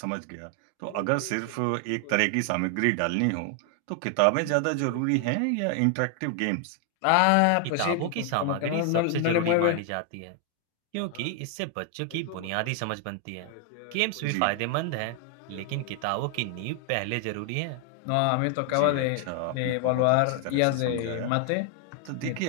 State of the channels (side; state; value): both; different; correlation 0.00